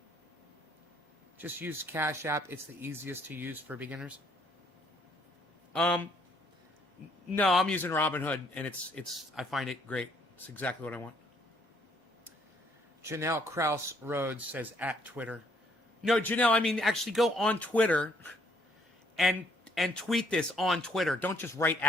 Just use Cash App. It's the easiest to use for beginners. No, I'm using Robinhood, and I find it great. It's exactly what I want. Janelle Krause Rhodes says at Twitter. No, Janelle, I mean actually go on Twitter and tweet this on Twitter. Don't just write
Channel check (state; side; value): normal; both; correlation 0.66